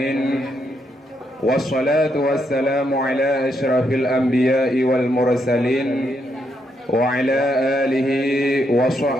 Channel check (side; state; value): both; normal; correlation 0.78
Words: Wassalatu wassalamu ala asyrafil anbiya'i wal mursalin wa ala alihi wa